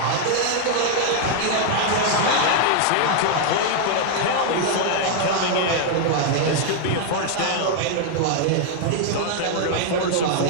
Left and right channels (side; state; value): both; different; correlation 0.00